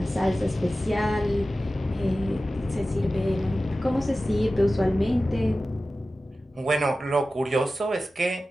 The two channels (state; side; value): normal; both; correlation 0.95